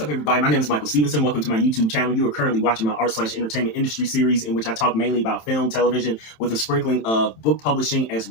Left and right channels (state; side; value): late; right; 27 ms